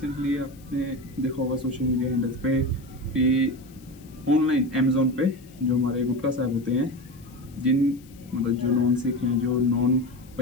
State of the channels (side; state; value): left; noise; hiss, 26 dB below the sound